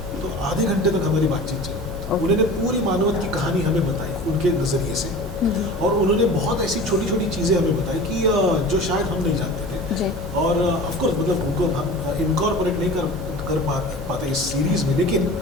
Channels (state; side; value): normal; both; correlation 0.38